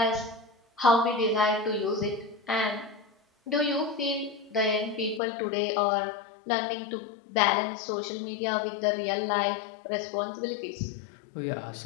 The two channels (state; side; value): drops out; right; at 5.2 s